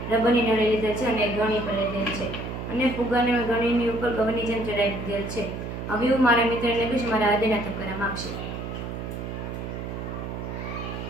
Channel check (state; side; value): noise; right; hum, 6 dB below the sound